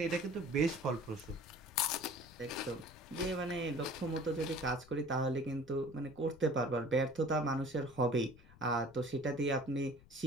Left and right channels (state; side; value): noise; left; rumble, 23 dB below the sound